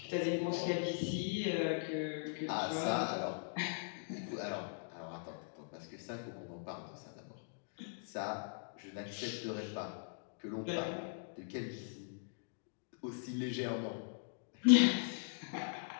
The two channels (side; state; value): right; silent; digital silence